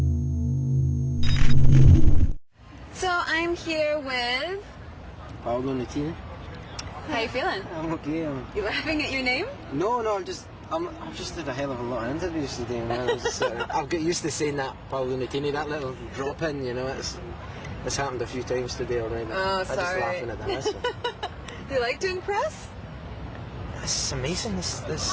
I'm here with Paolo Nutini. How you feeling? I'm okay. You laughing at your name? No, I've just had a hell of a lot of interviews today, man. I've got used to saying that, Paolo Nutini, that little drop in, you know. It's happened a few times today already. Oh, I'm just laughing at that. So. Do you like doing press? It's amazing. This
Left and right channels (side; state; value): both; identical; correlation 1.00